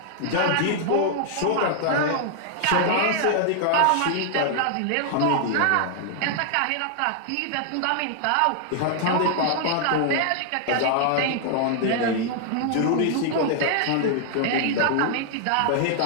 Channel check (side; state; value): both; different; correlation 0.00